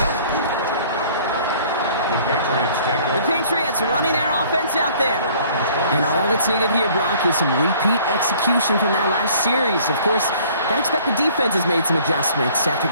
The Patriots take over. The Patriots running their offense out there. And all that's needed here, Brock, is some repeat execution from that last series. Of course, I expect the defense has made some adjustments after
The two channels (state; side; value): inverted; both; correlation -0.54